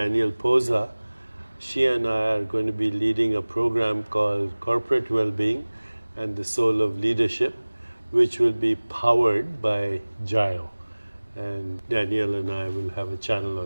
Posa. She and I are going to be leading a program called Corporate Wellbeing and the Soul of Leadership, which will be powered by Jayo. And Danielle and I will have a channel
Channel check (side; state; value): both; inverted; correlation -1.00